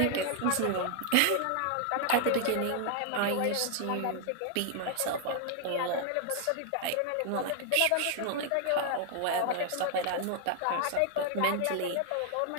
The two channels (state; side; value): different; both; correlation 0.00